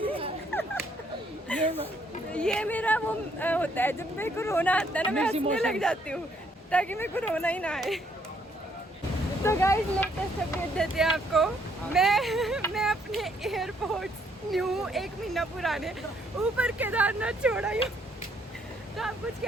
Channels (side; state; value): both; normal; correlation 0.69